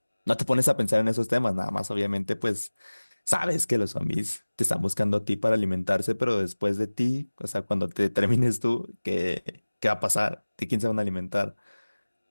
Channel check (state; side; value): inverted; both; correlation -1.00